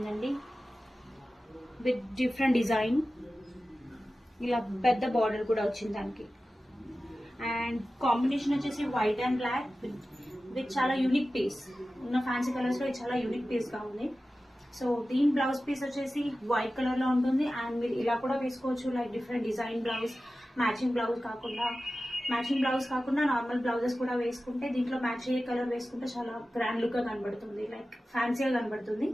విత్ డిఫరెంట్ డిజైన్. ఇలా పెద్ద బార్డర్ కూడా వచ్చింది దానికి. అండ్ కాంబినేషన్ వచ్చేసి వైట్ అండ్ బ్లాక్ విత్ చాలా యూనిక్ పీస్. ఉన్న ఫ్యాన్సీ కలర్స్ లో ఇది చాలా యూనిక్ పీస్ గా ఉంది. సో దీని బ్లౌజ్ పీస్ వచ్చేసి వైట్ కలర్ లో ఉంటుంది. అండ్ మీరు ఇలా కూడా వేసుకోవచ్చు, like different design blouse, matching blouse కాకుండా నార్మల్ బ్లౌజెస్ కూడా వేసుకుంటే, దీంట్లో మ్యాచ్ అయ్యే కలర్ వేసుకుంటే చాలా గ్రాండ్ లుక్ గా కనబడుతుంది, లైక్ ఫ్యాన్సీగా కనబడుతుంది.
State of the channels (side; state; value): both; normal; correlation 0.95